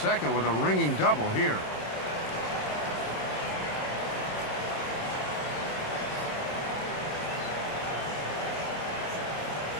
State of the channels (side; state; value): right; late; 27 ms